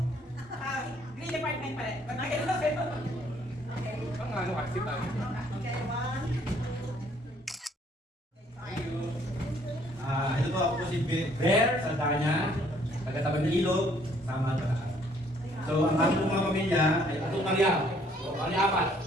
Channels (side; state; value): both; normal; correlation 0.63